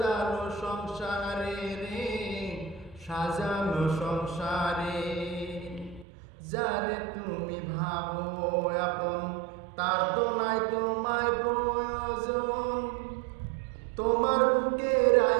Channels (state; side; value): drops out; left; at 6.1 s